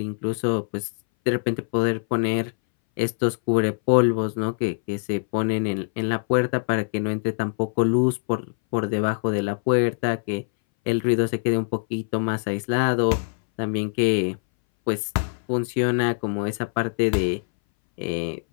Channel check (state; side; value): silent; right; 61 dB below the other